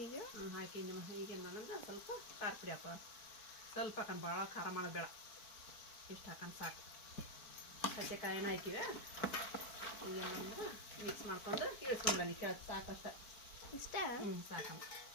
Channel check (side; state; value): right; late; 4.5 ms